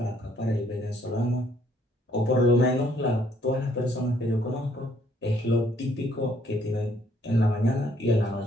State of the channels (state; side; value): normal; both; correlation 0.65